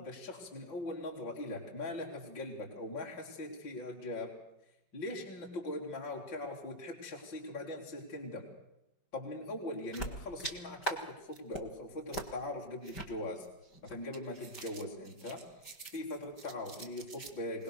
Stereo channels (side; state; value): right; late; 5.2 ms